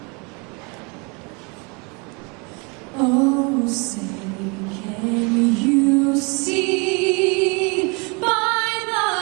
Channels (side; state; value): left; quieter; 31.1 dB